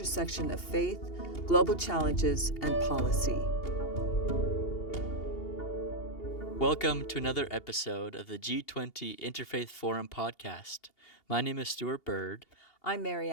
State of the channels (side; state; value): right; late; 2.8 ms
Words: of faith, global challenges, and policy. Welcome to another episode of the G20 Interfaith Forum Podcast. My name is Stuart Bird. I'm